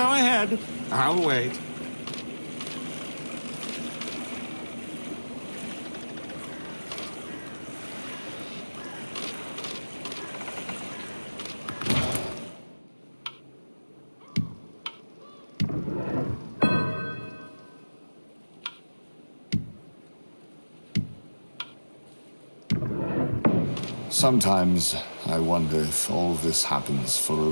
ahead. I'll wait. Sometimes I wonder if all this happens for a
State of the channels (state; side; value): inverted; both; correlation -1.00